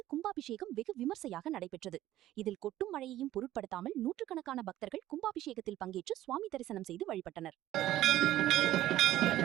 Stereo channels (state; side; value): quieter; left; 14.1 dB